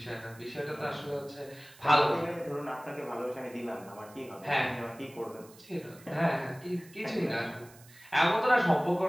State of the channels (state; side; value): noise; right; hiss, 23 dB below the sound